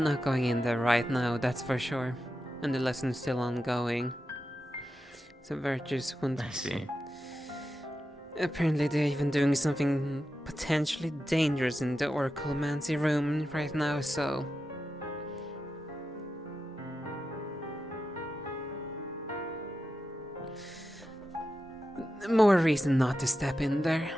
not going in there right now, that's for sure. And the lesson's still ongoing. So Virtus won't... I see. Apparently they're even doing something potentially dangerous in the Oraclemancy room right now, so... More reason not to step in there.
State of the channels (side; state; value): both; normal; correlation 0.90